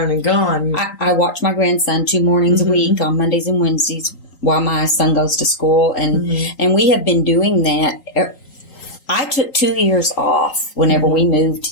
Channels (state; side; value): late; right; 3.8 ms